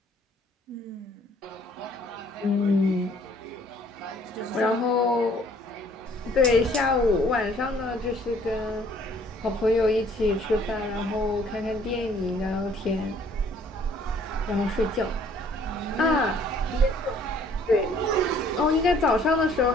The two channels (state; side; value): normal; both; correlation 0.59